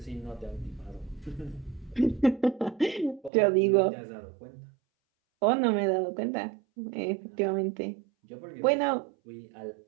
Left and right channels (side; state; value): left; drops out; at 3.3 s